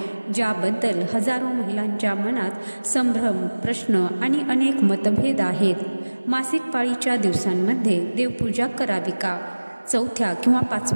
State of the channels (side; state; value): both; inverted; correlation -1.00